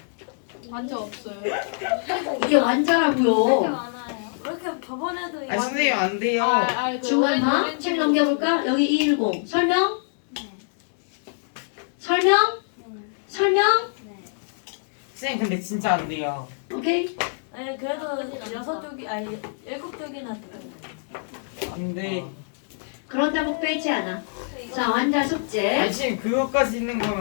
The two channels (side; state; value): right; silent; digital silence